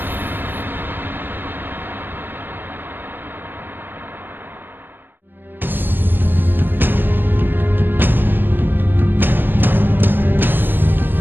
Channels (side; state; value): left; late; 0.096 ms